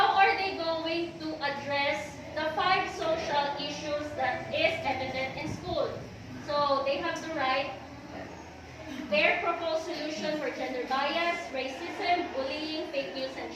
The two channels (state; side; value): identical; both; correlation 1.00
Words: are they going to address the 5 social issues that is evident in school? So they have to write their proposed solution for gender bias, racism, bullying, fake news, and